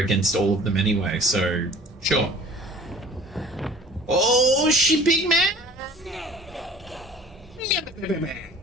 all of them anyway, so sure. Oh, she big man!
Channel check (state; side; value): normal; both; correlation 0.47